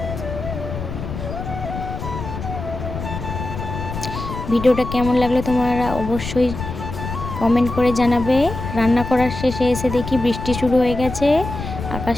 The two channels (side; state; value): left; noise; rumble, 7 dB below the sound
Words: ভিডিওটা কেমন লাগলো তোমরা অবশ্যই কমেন্ট করে জানাবে। রান্না করার শেষে এসে দেখি বৃষ্টি শুরু হয়ে গেছে।